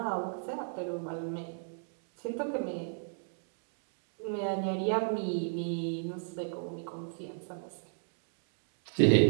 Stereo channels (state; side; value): silent; left; digital silence